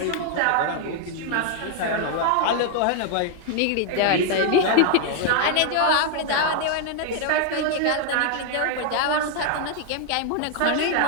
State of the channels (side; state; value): both; different; correlation 0.00